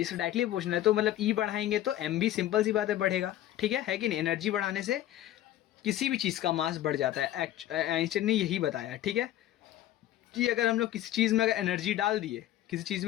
डायरेक्टली प्रोपोर्शनल है, तो मतलब ई बढ़ाएंगे तो एम भी सिंपल सी बात है बढ़ेगा। ठीक है कि नहीं? एनर्जी बढ़ाने से किसी भी चीज़ का मास बढ़ जाता है। आइंस्टाइन ने यही बताया। ठीक है, कि अगर हम लोग किसी चीज़ में अगर एनर्जी डाल दिए, किसी चीज़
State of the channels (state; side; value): quieter; right; 13.2 dB